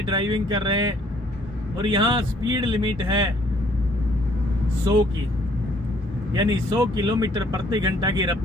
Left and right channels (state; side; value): normal; both; correlation 0.63